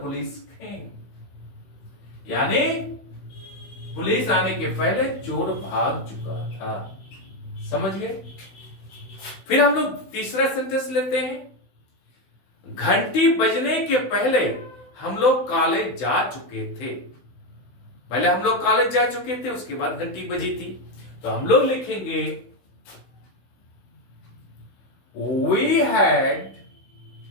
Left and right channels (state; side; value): late; right; 16 ms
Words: came. यानी पुलिस आने के पहले चोर भाग चुका था। समझ गए? फिर हम लोग तीसरा सेंटेंस लेते हैं। घंटी बजने के पहले हम लोग कॉलेज जा चुके थे। पहले हम लोग कॉलेज जा चुके थे, उसके बाद घंटी बजी थी। तो हम लोग लिखेंगे, we had